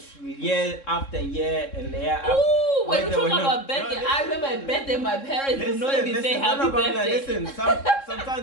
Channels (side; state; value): right; late; 3.7 ms